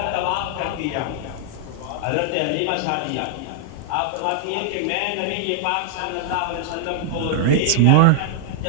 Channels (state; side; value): different; both; correlation -0.01